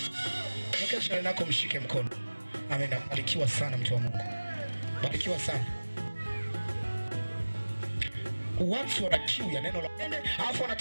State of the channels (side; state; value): both; inverted; correlation -1.00